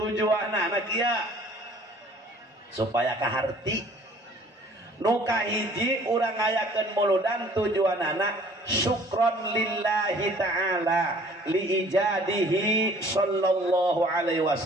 kieu supaya kaharti nuka hiji urang ngayakeun muludan tujuanana syukron lillahi ta'ala li ijadihi sallallahu alaihi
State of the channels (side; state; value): both; normal; correlation 0.53